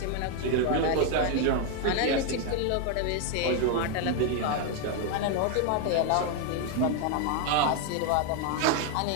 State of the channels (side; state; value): both; different; correlation 0.01